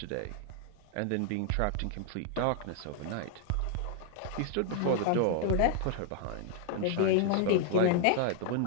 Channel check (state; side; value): different; both; correlation 0.00